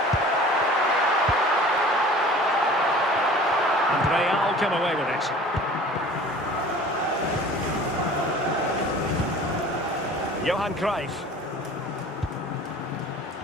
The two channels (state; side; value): normal; both; correlation 0.44